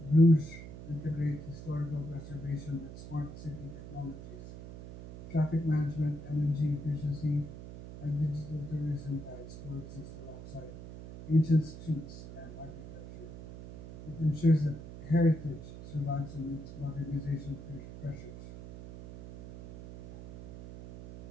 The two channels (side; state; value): right; noise; hum, 12 dB below the sound